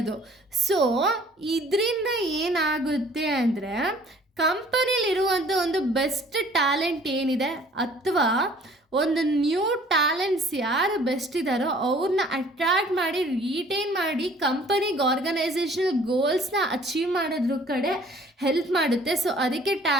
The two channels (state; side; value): normal; both; correlation 0.54